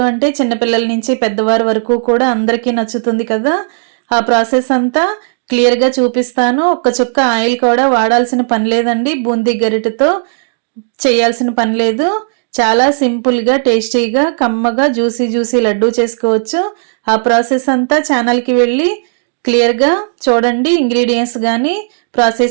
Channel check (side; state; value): left; silent; digital silence